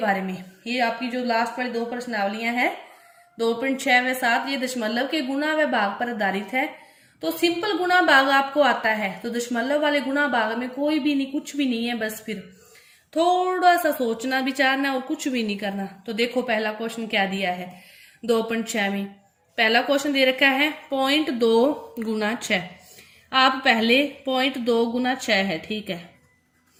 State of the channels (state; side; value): identical; both; correlation 1.00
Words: में। ये आपकी जो लास्ट वाली 2 प्रश्नावलियां हैं 2.6 व 7, ये दशमलव के गुणा व भाग पर आधारित है। तो सिंपल गुणा भाग आपको आता है, तो दशमलव वाले गुणा भाग में कोई भी नहीं, कुछ भी नहीं है, बस फिर थोड़ा सा सोचना विचारना और कुछ भी नहीं करना। तो देखो पहला क्वेश्चन क्या दिया है 2.6 में। पहला क्वेश्चन दे रखा है 0.2 गुना 6। आप पहले 0.2 गुना 6 है, ठीक है।